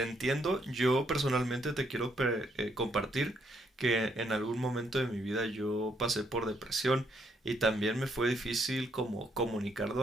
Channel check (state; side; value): normal; both; correlation 0.73